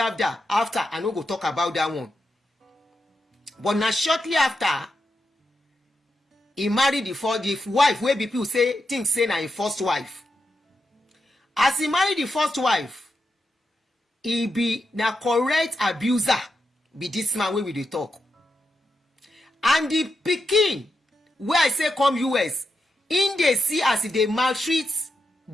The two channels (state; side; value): normal; both; correlation 0.86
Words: I no go talk about that one. But now shortly after, he married the wife wey people say na him first wife. As he married the first wife, he be na correct abuser, be this man wey we dey talk. And the pikin wey I say come US, in dey see as they maltreat